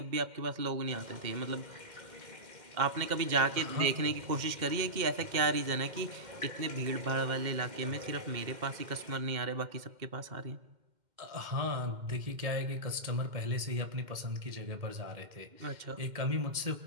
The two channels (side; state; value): left; late; 2.1 ms